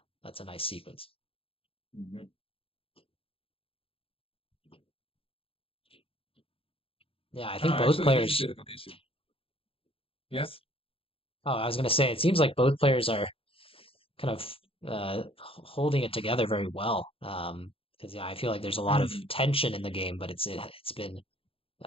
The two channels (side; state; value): right; late; 0.27 ms